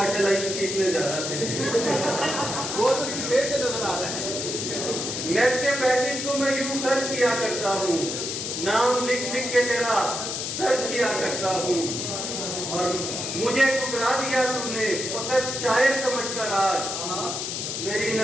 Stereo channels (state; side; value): noise; left; hiss, 4 dB below the sound